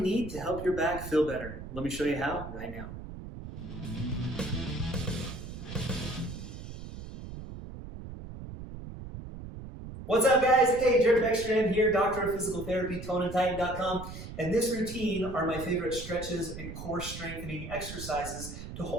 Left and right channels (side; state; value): right; noise; rumble, 10 dB below the sound